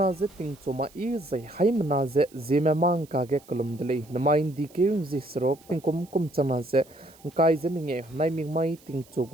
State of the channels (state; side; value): noise; right; hiss, 26 dB below the sound